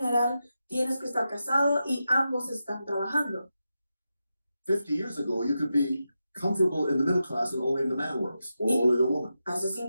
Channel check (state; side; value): inverted; both; correlation -0.89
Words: tienes que estar casado y ambos están trabajando. 50 years ago, you could be comfortable in the middle class and only the man works, or only the woman. Hace